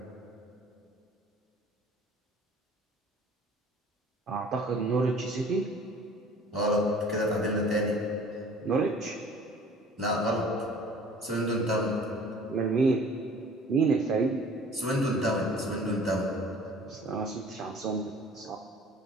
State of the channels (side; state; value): both; normal; correlation 0.49